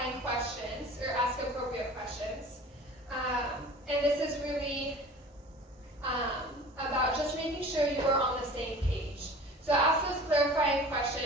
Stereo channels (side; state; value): both; normal; correlation 0.42